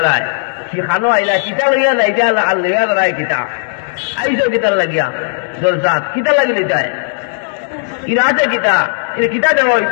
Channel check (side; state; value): right; silent; digital silence